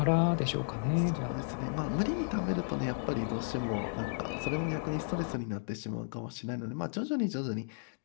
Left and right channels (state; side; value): silent; right; digital silence